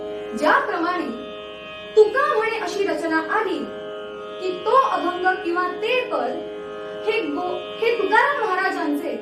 ज्याप्रमाणे तुका म्हणे अशी रचना आली की तो अभंग किंवा ते पद हे तुकाराम महाराजांचे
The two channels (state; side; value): identical; both; correlation 1.00